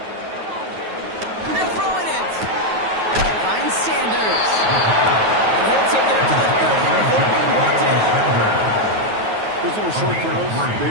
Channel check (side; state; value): left; late; 9.3 ms